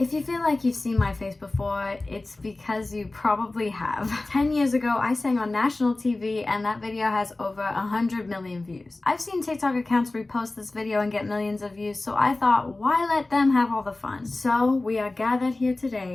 you feel like you've seen my face before, it's because you probably have. 10 years ago, I sang on national TV and that video has over 100 million views. I've seen TikTok accounts repost this video and get millions of views, so I thought, why let them have all the fun? So we are gathered here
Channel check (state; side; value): quieter; right; 3.0 dB